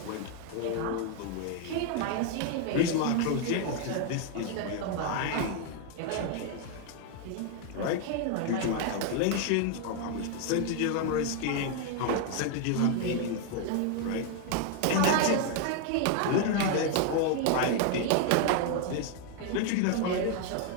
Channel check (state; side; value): different; both; correlation 0.01